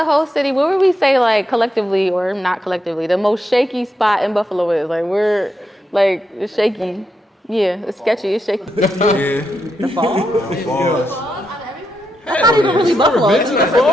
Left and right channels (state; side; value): normal; both; correlation 0.84